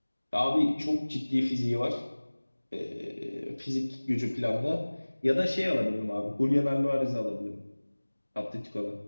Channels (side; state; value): both; inverted; correlation -1.00